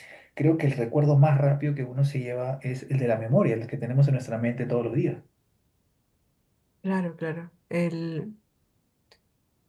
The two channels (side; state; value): both; identical; correlation 1.00